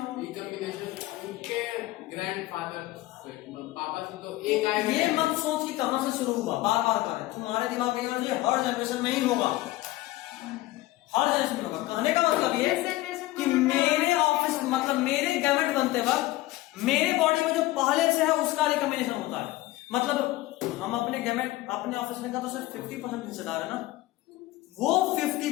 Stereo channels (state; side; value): quieter; right; 17.8 dB